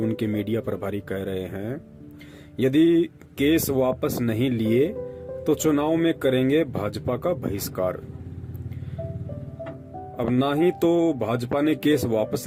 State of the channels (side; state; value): both; identical; correlation 1.00